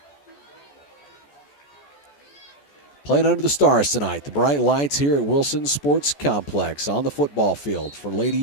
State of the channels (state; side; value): late; right; 14 ms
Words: Playing under the stars tonight. The bright lights here at Wilson Sports Complex on the football field for